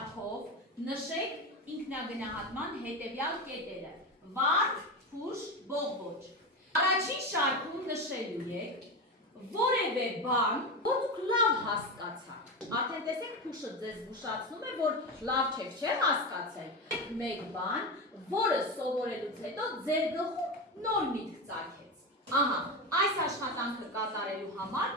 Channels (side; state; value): both; normal; correlation 0.19